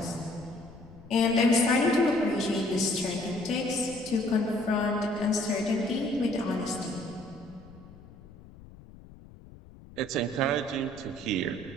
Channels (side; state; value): left; noise; rumble, 20 dB below the sound